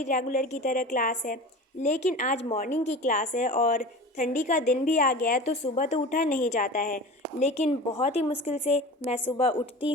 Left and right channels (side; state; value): both; normal; correlation 0.35